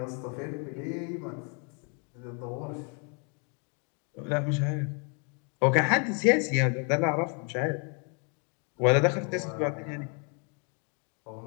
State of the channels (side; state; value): right; quieter; 37.3 dB